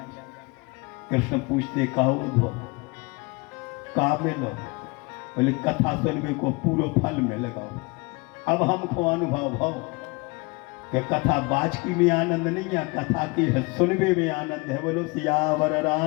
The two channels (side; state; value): right; quieter; 27.2 dB